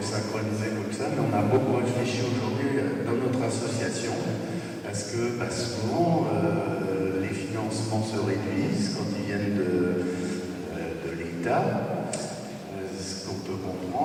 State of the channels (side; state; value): both; identical; correlation 1.00